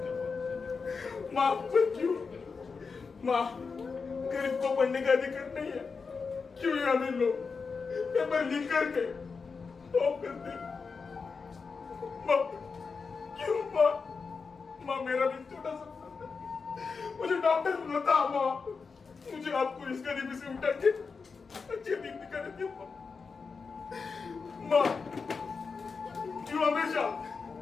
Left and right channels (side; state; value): right; quieter; 5.0 dB